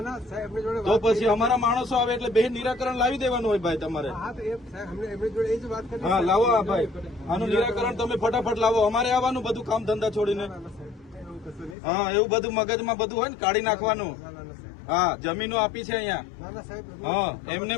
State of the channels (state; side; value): drops out; right; at 11.8 s